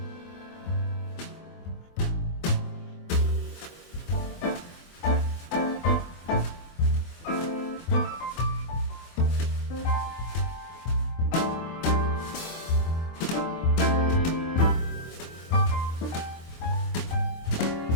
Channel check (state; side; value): late; right; 24 ms